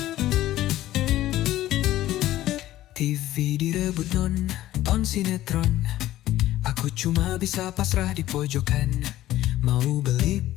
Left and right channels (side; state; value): right; quieter; 14.6 dB